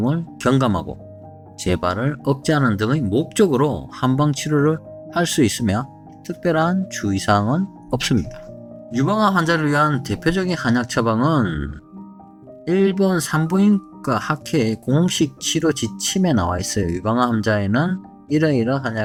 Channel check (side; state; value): both; identical; correlation 1.00